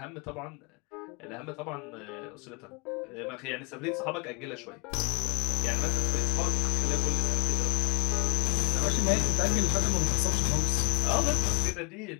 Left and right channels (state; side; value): quieter; right; 33.4 dB